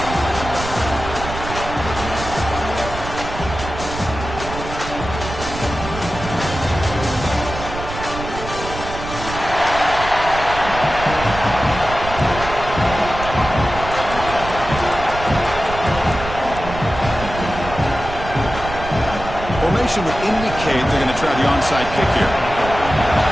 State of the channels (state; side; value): noise; right; rumble, 9 dB below the sound